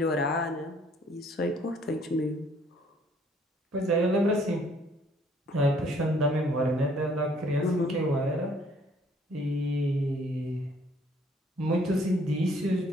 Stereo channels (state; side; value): normal; both; correlation 0.62